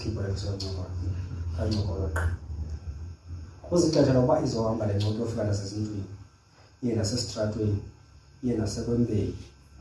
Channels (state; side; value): identical; both; correlation 1.00